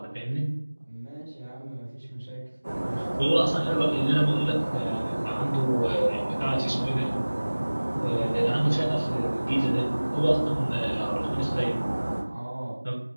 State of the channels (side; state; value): both; inverted; correlation -1.00